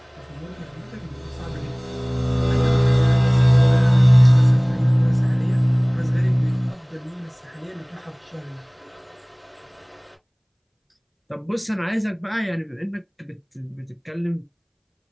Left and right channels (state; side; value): identical; both; correlation 1.00